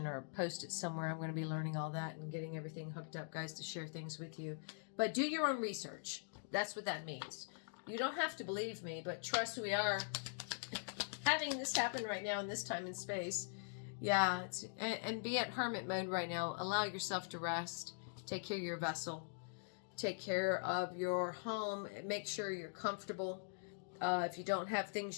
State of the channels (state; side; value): silent; right; digital silence